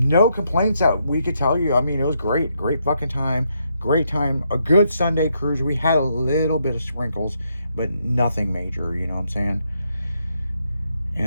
complaints that we could tell you. I mean, it was great fucking time, a good Sunday cruise. We had a little bit of sprinkles, but nothing major, you know what I'm saying?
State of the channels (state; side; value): inverted; both; correlation -0.78